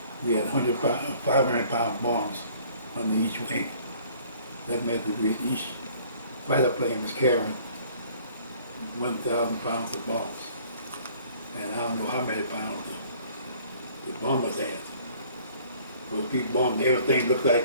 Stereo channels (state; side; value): inverted; both; correlation -0.55